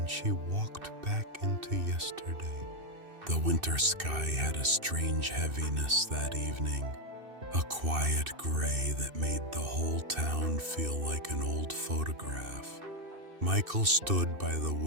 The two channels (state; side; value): late; left; 2.6 ms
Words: she walked back into yesterday. The winter sky had a strange heaviness that evening, a quiet gray that made the whole town feel like an old photograph. Michael stood by the